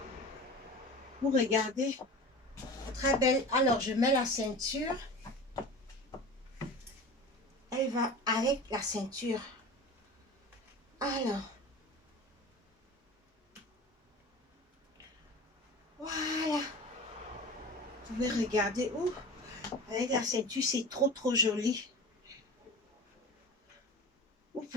Vous regardez. Très belle. Alors, je mets la ceinture. Elle va avec la ceinture. Alors. Voilà. Vous pouvez regarder. Ouh, avec la ceinture, c'est trop, trop joli. Vous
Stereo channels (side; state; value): both; normal; correlation 0.35